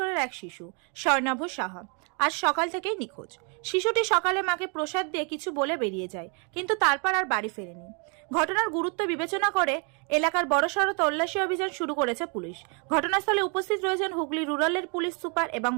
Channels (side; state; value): left; quieter; 35.8 dB